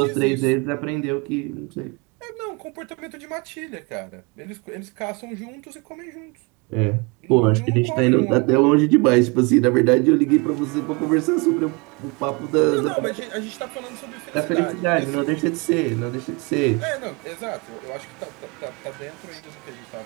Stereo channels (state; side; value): quieter; left; 29.2 dB